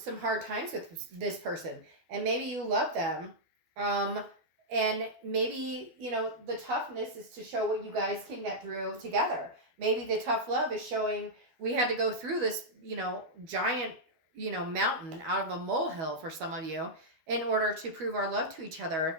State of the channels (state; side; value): late; left; 12 ms